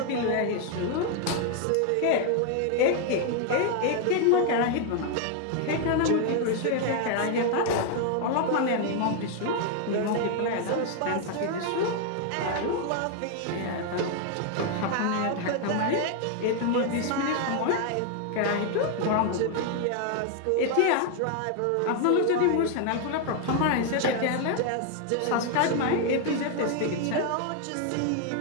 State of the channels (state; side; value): different; both; correlation 0.00